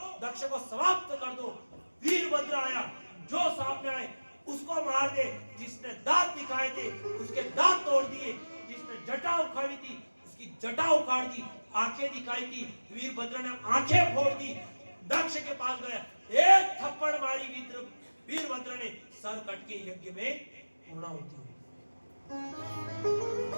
दक्ष को समाप्त कर दो। वीरभद्र आया, जो सामने आए उसको मार दे। जिसने दांत दिखाए थे उसके दांत तोड़ दिए, जिसने जटा उखाड़ी थी उसकी जटा उखाड़ दी, आंखें दिखाई थी वीरभद्र ने आंखें फोड़ दी। दक्ष के पास गया, एक थप्पड़ मारी वीरभद्र ने, सर कट के यज्ञ में पूर्णाहुति हुई।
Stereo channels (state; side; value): inverted; both; correlation -1.00